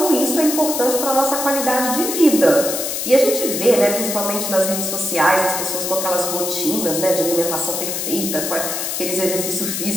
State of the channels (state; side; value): noise; left; hiss, 3 dB below the sound